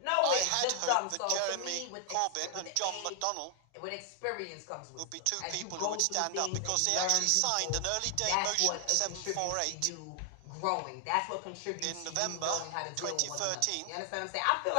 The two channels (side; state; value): both; different; correlation 0.00